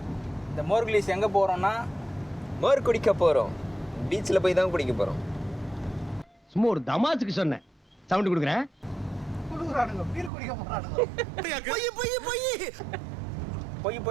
இந்த மோர்கிலிஸ் எங்க போறோம்னா மோர் குடிக்க போறோம். பீச்ல போய் தான் குடிக்க போறோம். சும்மா ஒரு தமாசுக்கு சொன்னேன். சவுண்ட் கொடுக்குறேன்.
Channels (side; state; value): left; drops out; at 10.3 s